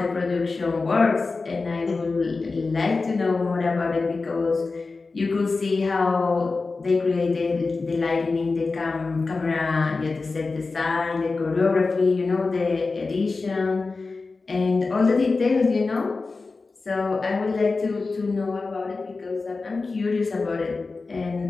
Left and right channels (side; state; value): right; quieter; 3.9 dB